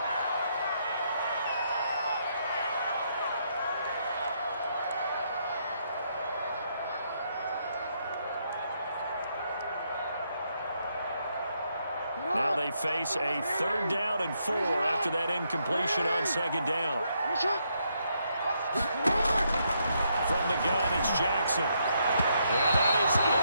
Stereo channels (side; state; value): both; inverted; correlation -0.76